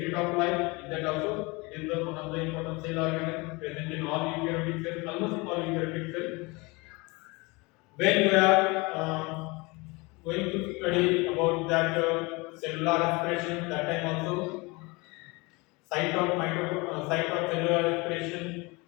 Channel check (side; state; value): right; quieter; 25.8 dB